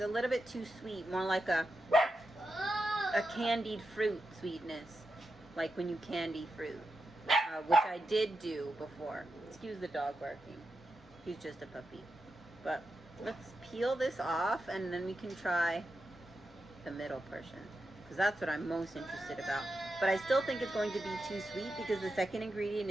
little bit too sweet, more like a candied fruit sweetness, like when you candy fruit, which I did do before. Excuse the dog barking. He's just a puppy. But let's peel this off, and then we can try the middle portion. because that's what I'm most interested about. But I still think it's going to be too sweet because the second ingredient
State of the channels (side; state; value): both; normal; correlation 0.88